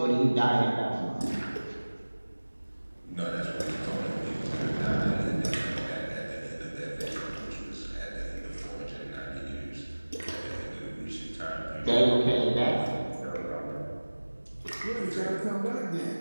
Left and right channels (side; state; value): both; inverted; correlation -1.00